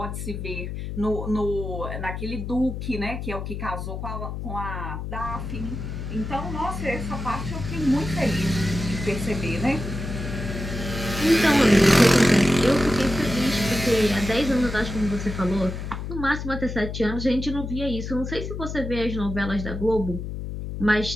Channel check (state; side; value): noise; left; hum, 6 dB below the sound